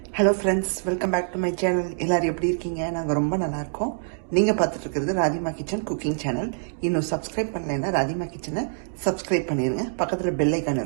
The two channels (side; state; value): left; silent; digital silence